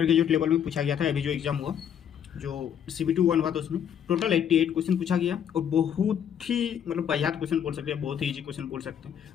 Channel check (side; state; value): right; quieter; 8.8 dB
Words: ग्रेजुएट लेवल में पूछा गया था। अभी जो एग्जाम हुआ, जो CBT 1 हुआ था, उसमें टोटल 88 क्वेश्चन पूछा गया और बहुत ही वाहियात क्वेश्चन बोल सकते हैं, बहुत ही ईजी क्वेश्चन बोल सकते हैं।